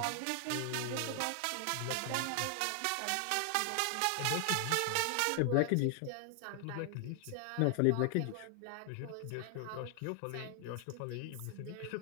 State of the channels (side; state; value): both; different; correlation 0.00